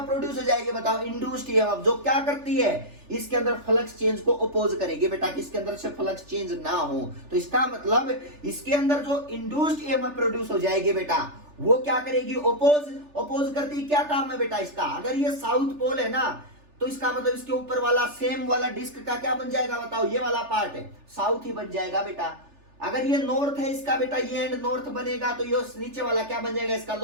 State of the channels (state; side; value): late; left; 3.4 ms